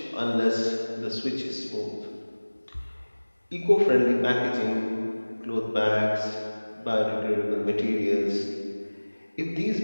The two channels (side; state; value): both; inverted; correlation -1.00